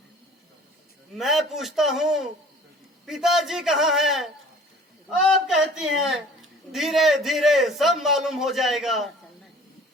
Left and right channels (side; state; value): both; normal; correlation 0.48